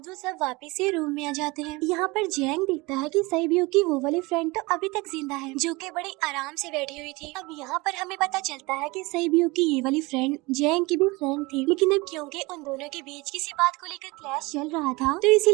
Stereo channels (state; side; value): quieter; left; 23.8 dB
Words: वो सब वापस से रूम में आ जाते हैं। यहाँ पर जैंग देखता है कि सहीब्यूक की वो वाली फ्रेंड तो अभी तक जिंदा है जो कि बड़ी आराम से बैठी हुई थी। अब यहाँ पर हमें पता चलता है कि सहीब्यूक की ये वाली फ्रेंड जैंग की भी फ्रेंड थी लेकिन अब क्योंकि उन दोनों के बीच किसी बात को लेकर क्लैश चल रहा था तो